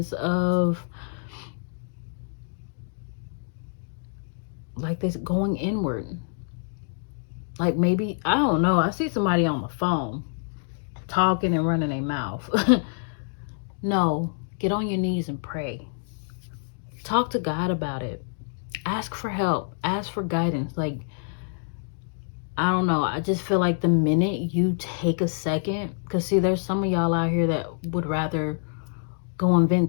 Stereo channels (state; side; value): silent; right; digital silence